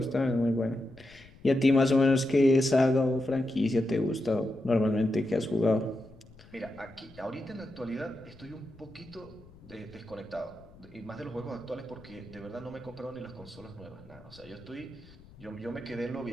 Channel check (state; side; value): noise; left; rumble, 22 dB below the sound